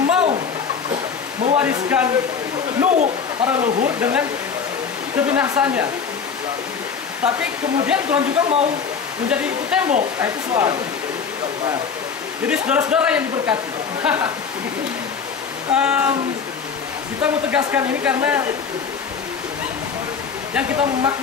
mau mewariskan Nuh para leluhur dengan kebinasaannya, tapi kemudian Tuhan juga mau menjadi itu tembok. Nah, itu soal. Nah, jadi saudara-saudara yang diberkati, kita mau tegaskan ini karena yang kita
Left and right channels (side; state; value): right; quieter; 6.2 dB